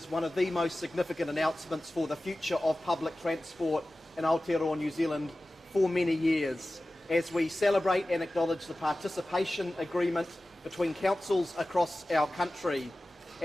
one of the most significant announcements for the future of public transport in Aotearoa, New Zealand for many years, as we celebrate and acknowledge the participation agreement between councils across our country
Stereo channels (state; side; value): normal; both; correlation 0.96